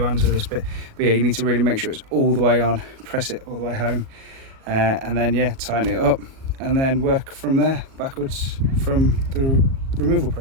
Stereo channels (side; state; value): left; late; 37 ms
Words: with this bit. But yeah, you need to really make sure it's all the way on, press it all the way home, and then yeah, tighten it up, and then work from there backwards from the removal